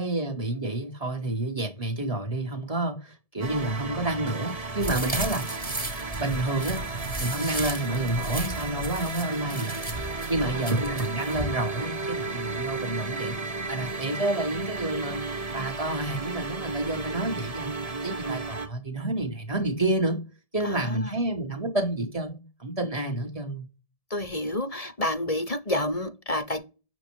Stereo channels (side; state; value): right; late; 1.7 ms